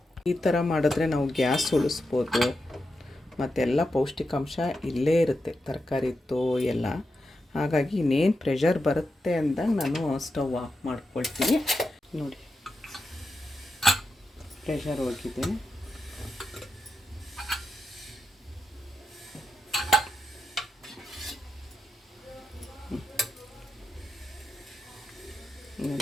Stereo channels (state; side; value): normal; both; correlation 0.87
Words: ಈ ಥರ ಮಾಡಿದ್ರೆ ನಾವು ಗ್ಯಾಸ್ ಉಳಿಸ್ಬೋದು, ಮತ್ತೆಲ್ಲ ಪೌಷ್ಟಿಕಾಂಶ ಇಲ್ಲೇ ಇರುತ್ತೆ ತರಕಾರಿದ್ದು ಎಲ್ಲ. ಹಾಗಾಗಿ ಇನ್ನೇನು ಪ್ರೆಷರ್ ಬರುತ್ತೆ ಅಂದಾಗ ನಾನು ಸ್ಟವ್ ಆಫ್ ಮಾಡ್ಕೊಳ್ತೀನಿ. ನೋಡಿ ಪ್ರೆಷರ್ ಹೋಗಿದೆ.